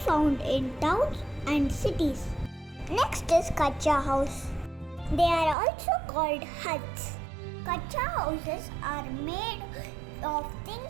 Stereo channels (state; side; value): drops out; left; at 5.6 s